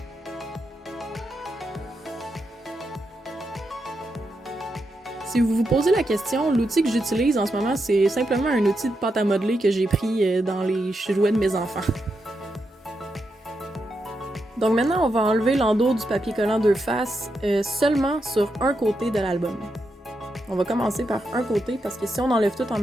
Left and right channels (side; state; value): both; normal; correlation 0.84